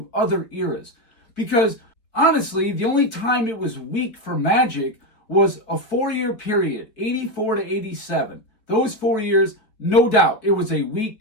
other eras? Because honestly, the only time it was weak for Magic was a 4-year period, 84 to 87. Those 4 years, no doubt, it was a weak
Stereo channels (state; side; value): late; right; 4.8 ms